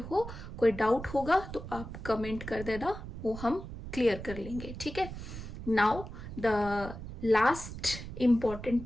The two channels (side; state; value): right; noise; rumble, 10 dB below the sound